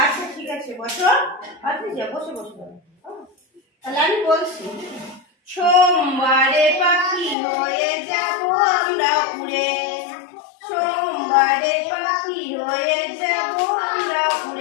আচ্ছা ঠিক আছে, বসো। আচ্ছা বসে বসো। তাহলে আমি বলছি। সোমবারে পাখি হয়ে যাব আমরা উড়ে, সোমবারে পাখি হয়ে যাব আমরা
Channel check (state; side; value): drops out; right; at 7.4 s